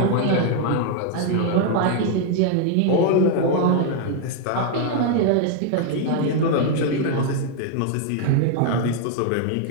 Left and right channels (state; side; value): different; both; correlation 0.00